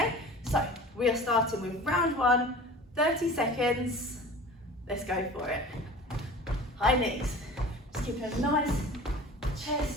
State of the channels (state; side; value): normal; both; correlation 0.40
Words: So we are starting with round 1, 30 seconds. Let's go for it. High knees. Just keep a nice